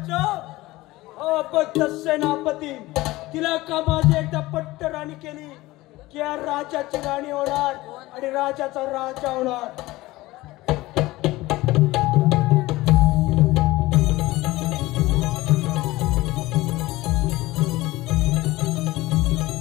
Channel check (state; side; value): quieter; right; 19.0 dB